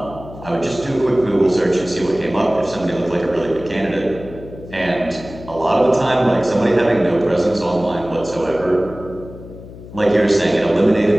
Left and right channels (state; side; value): noise; left; hum, 16 dB below the sound